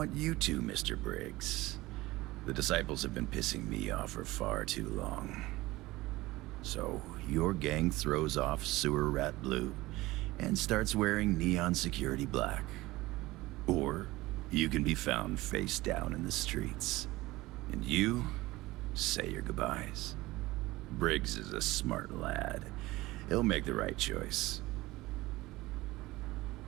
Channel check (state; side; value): quieter; left; 19.2 dB